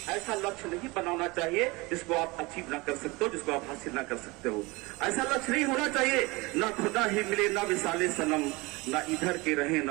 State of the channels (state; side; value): quieter; left; 24.0 dB